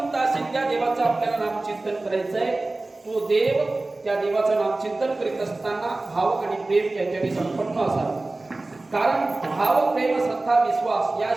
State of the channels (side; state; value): left; quieter; 3.0 dB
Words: असेल त्या देवाचं आपल्याला नामचिंतन करायचं आहे. तो देव त्या देवाचं नामचिंतन करीत असताना भाव आणि प्रेम याच्याने संपन्न असावे. कारण भाव प्रेम श्रद्धा विश्वास